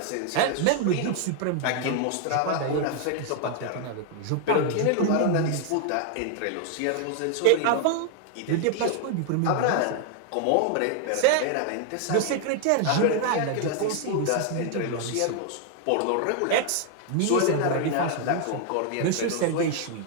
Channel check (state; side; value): different; both; correlation 0.00